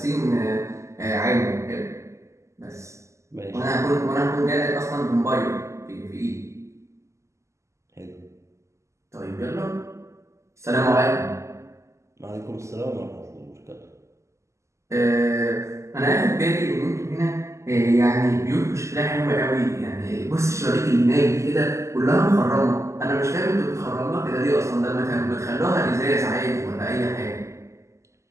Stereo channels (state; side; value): late; left; 0.14 ms